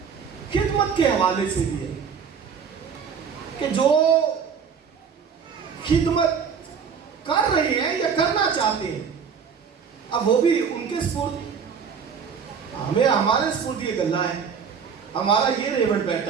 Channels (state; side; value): quieter; left; 6.6 dB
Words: खिदमत के हवाले से भी है, कि जो खिदमत कर रहे हैं या करना चाहते हैं, अब वो भी उनके स्फूर्त, हमें हमारे स्फूर्त ये गल्ला है, हमारा ये रेवड़